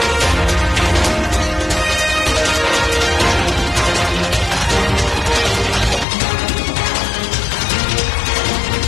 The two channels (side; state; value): right; drops out; at 6.1 s